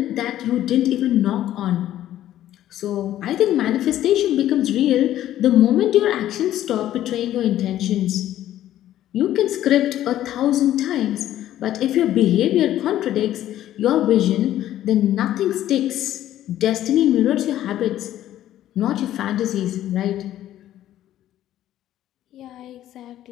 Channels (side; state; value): right; quieter; 12.7 dB